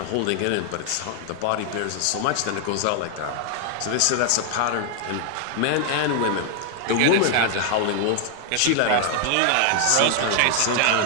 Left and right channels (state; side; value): different; both; correlation 0.00